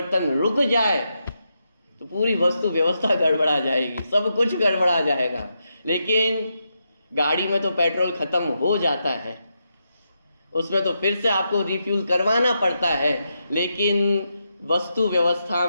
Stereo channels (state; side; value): inverted; both; correlation -0.84